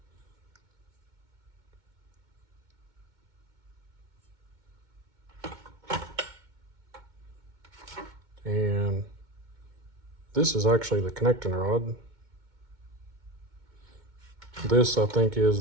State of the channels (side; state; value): left; late; 2.2 ms